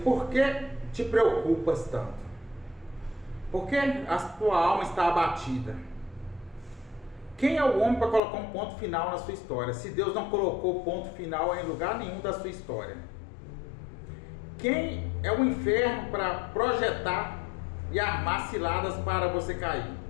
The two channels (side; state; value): right; drops out; at 8.2 s